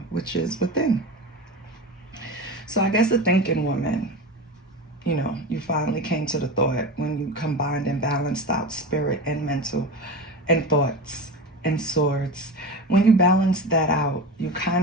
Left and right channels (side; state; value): both; normal; correlation 0.27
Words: which is within. So I guess the thinking woman, you finally came to the thought when you combined and balanced out spirit and mental and thoughts and swords. When you balance that out, you